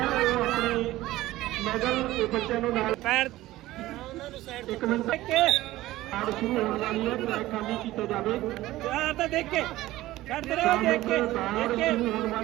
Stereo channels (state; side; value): quieter; left; 16.6 dB